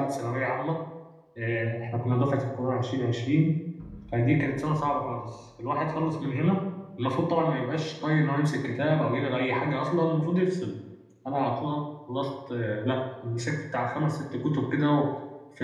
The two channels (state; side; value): identical; both; correlation 1.00